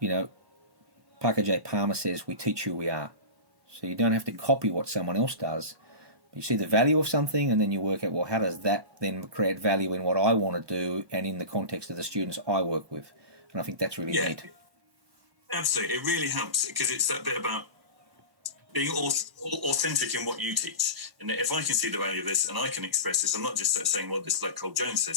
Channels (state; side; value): late; left; 1.0 ms